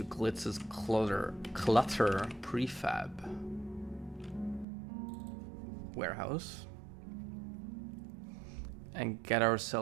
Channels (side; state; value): left; drops out; at 4.7 s